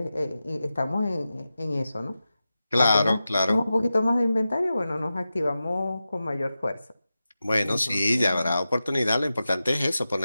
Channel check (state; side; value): inverted; both; correlation -0.93